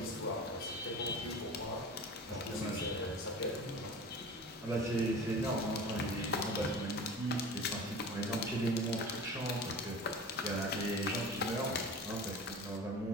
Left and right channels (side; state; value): both; normal; correlation 0.37